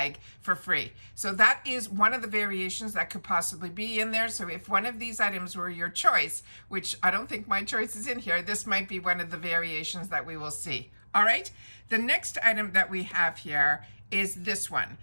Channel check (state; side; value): inverted; both; correlation -1.00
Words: for free. So that is one of the variations that could possibly be in there. So if one of these items were your choice, which I don't think my choice is in here, this might be one of the variations that we will see. All right, the next item that we have here is this one.